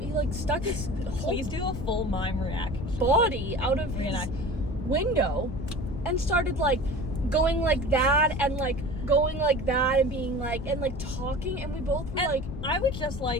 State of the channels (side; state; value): left; noise; rumble, 7 dB below the sound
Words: his whole Please do a full mime reaction. Body out of his window and started like going like that and like going like that and being like and like talking, and we both were like, I would just